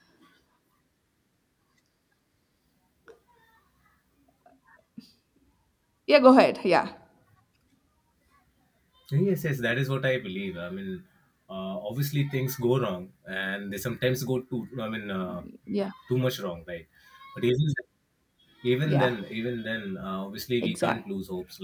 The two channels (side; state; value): both; identical; correlation 1.00